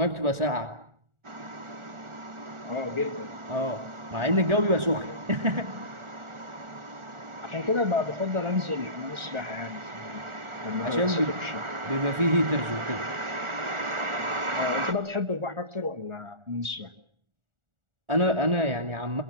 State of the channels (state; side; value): late; left; 1.4 ms